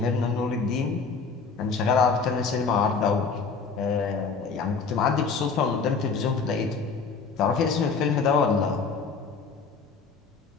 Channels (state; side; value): quieter; right; 5.0 dB